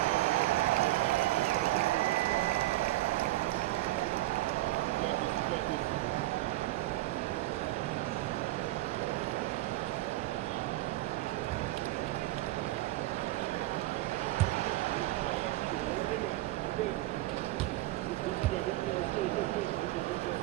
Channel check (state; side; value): quieter; left; 17.8 dB